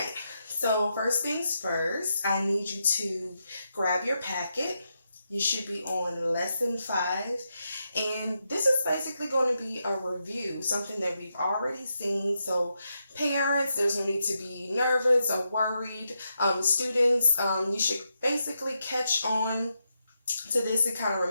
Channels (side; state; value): both; inverted; correlation -0.84